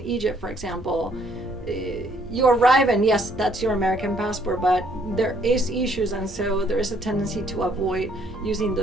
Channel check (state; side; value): normal; both; correlation 0.65